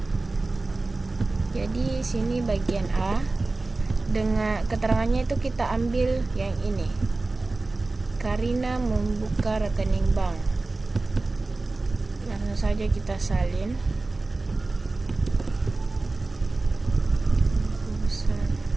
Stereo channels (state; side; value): quieter; left; 3.3 dB